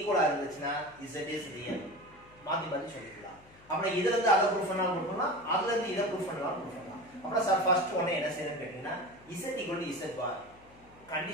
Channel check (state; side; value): noise; left; hum, 26 dB below the sound